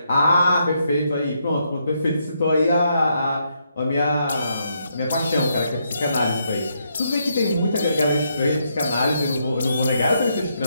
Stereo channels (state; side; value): inverted; both; correlation -0.77